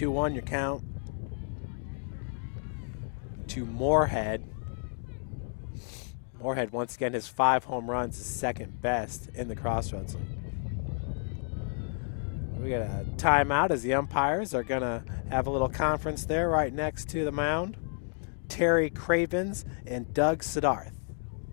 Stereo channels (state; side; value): silent; right; 55 dB below the other